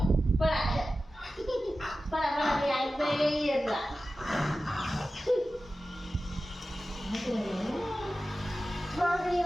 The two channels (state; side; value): normal; both; correlation 0.94